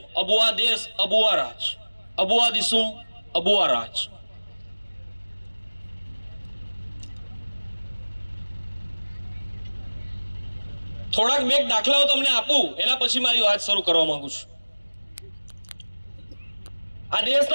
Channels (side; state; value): both; inverted; correlation -1.00